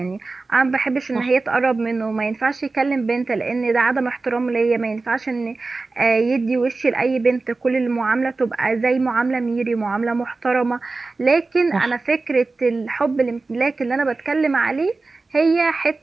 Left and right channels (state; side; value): quieter; left; 3.7 dB